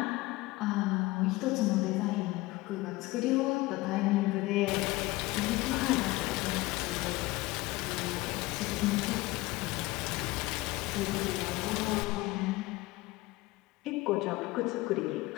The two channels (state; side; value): quieter; right; 20.2 dB